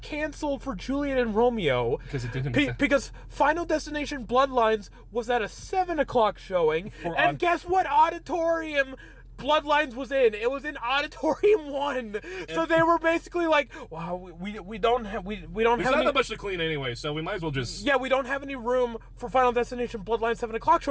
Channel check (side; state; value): both; identical; correlation 1.00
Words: for Juliet and Romeo because it didn't. Because Final Destination Bloodlines was at a 7 o'clock showing, and guess what auditorium Bloodlines was in? It was in Auditorium 1. So they were basically like, "Wow, we don't have There's not not that much to clean anyway, so we might as well just we don't have any room for Final Destination Bloodlines 7 o'clock